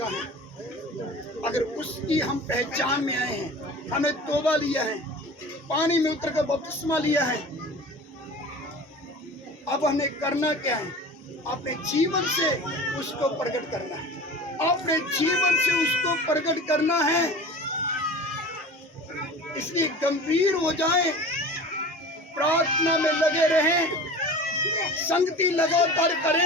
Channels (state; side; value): normal; both; correlation 0.37